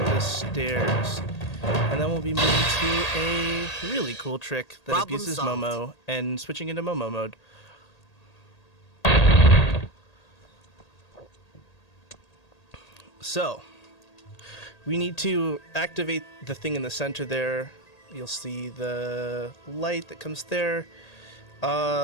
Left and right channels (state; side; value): late; right; 1.8 ms